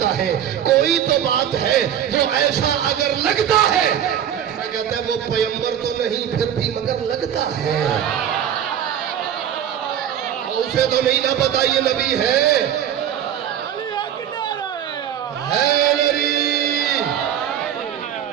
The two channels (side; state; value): left; quieter; 9.7 dB